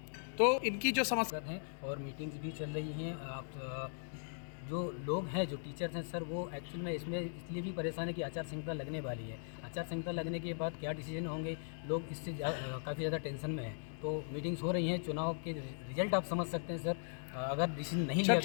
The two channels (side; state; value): right; silent; digital silence